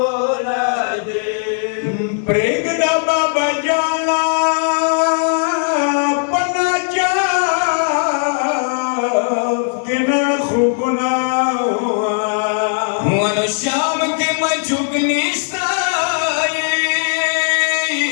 न दे प्रेगदा बाबा जाना पना जाफ के न खूब ना हुआ श्याम के मजुग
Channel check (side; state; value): right; silent; 67 dB below the other